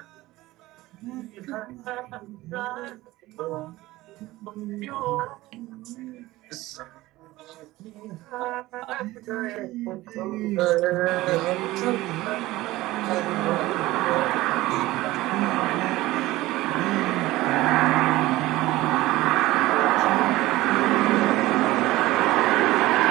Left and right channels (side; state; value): left; quieter; 18.0 dB